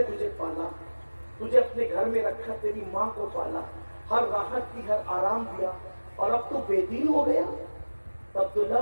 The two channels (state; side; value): inverted; both; correlation -1.00